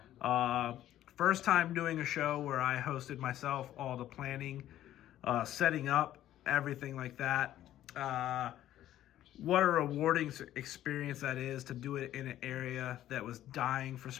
First time doing a show where I hosted myself, all the planning, setting up, everything like that. What a rewarding experience that is to do it in an area that was dying for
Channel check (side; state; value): right; quieter; 12.7 dB